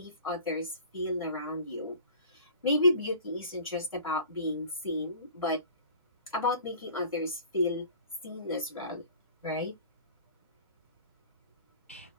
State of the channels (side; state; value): both; inverted; correlation -0.44